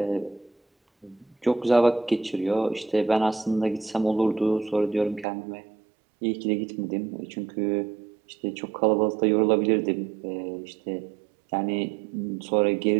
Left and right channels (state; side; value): drops out; left; at 5.2 s